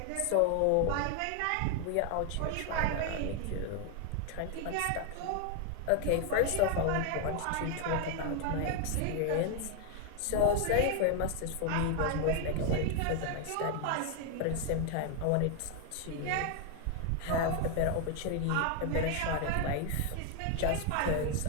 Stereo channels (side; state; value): both; different; correlation 0.00